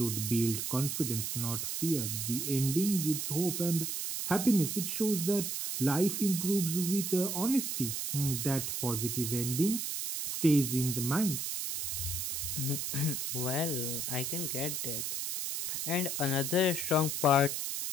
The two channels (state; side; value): noise; right; hiss, 2 dB below the sound